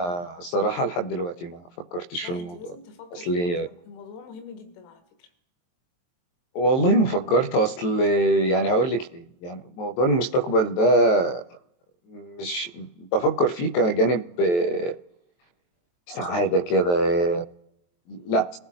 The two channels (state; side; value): late; right; 23 ms